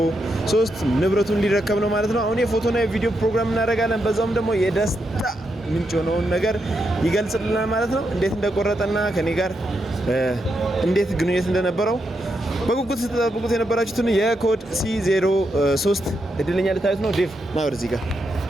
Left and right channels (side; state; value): both; normal; correlation 0.83